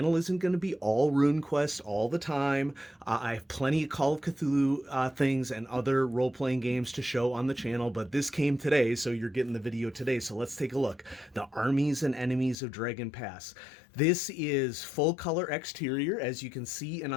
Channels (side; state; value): right; drops out; at 12.6 s